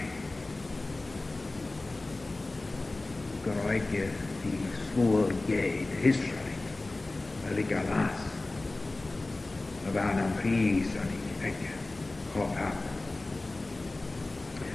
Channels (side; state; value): right; quieter; 3.0 dB